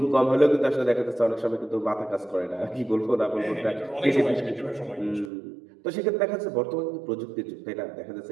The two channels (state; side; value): drops out; left; at 5.3 s